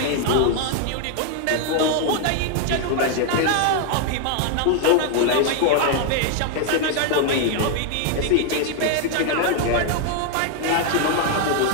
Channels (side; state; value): both; different; correlation 0.00